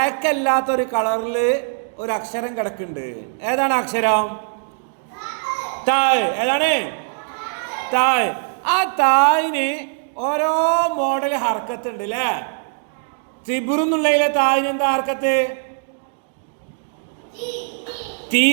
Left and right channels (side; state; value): left; silent; digital silence